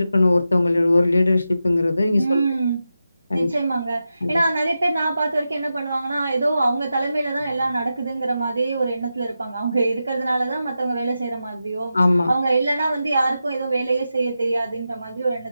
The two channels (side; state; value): both; inverted; correlation -0.90